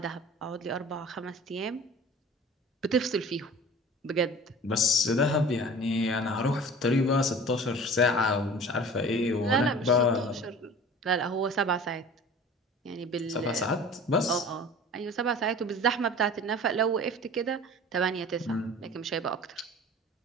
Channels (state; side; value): normal; both; correlation 0.42